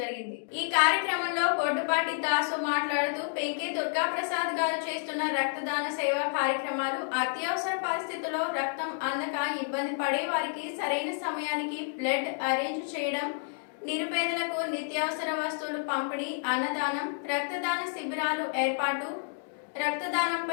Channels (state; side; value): silent; right; digital silence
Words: ఈ కార్యక్రమంలో బొడ్డుపాటి దాసు మాట్లాడుతూ పెంకే దుర్గాప్రసాద్ గారు చేస్తున్న రక్తదాన సేవా కార్యక్రమాలు అత్యవసర పరిస్థితుల్లో రక్తం అందక ఇబ్బంది పడే వారికి సరైన సమయానికి బ్లడ్ అరేంజ్ చేయడం, నిరుపేదలకు నిత్యావసర వస్తువులు పంపిణీ, అన్నదానం, రక్తదాన శిబిరాలు ఏర్పాటు,